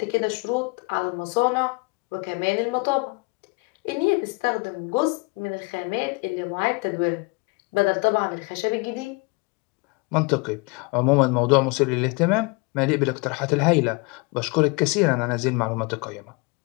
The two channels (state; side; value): quieter; right; 28.4 dB